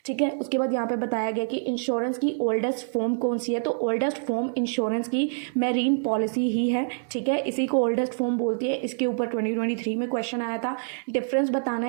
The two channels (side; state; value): left; silent; 61 dB below the other